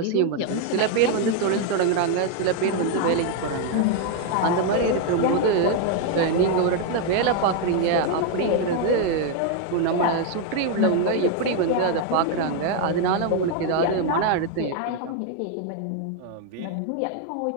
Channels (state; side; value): different; both; correlation 0.01